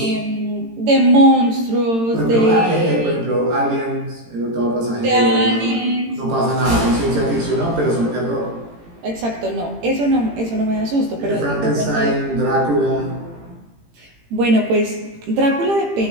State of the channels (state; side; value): late; left; 18 ms